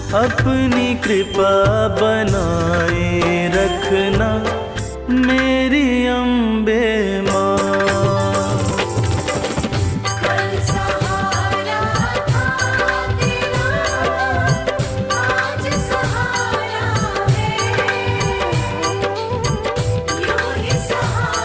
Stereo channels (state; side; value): identical; both; correlation 1.00